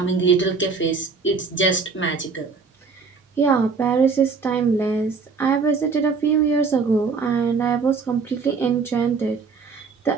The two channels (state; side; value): quieter; left; 4.9 dB